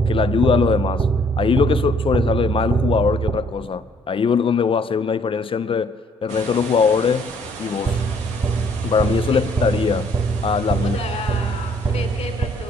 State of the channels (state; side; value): normal; both; correlation 0.63